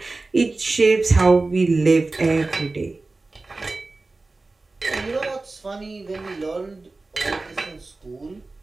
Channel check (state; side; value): quieter; left; 3.4 dB